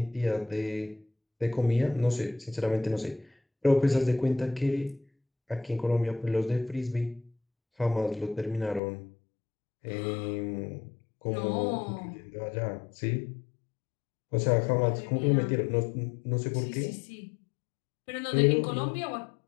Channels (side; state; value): right; drops out; at 8.8 s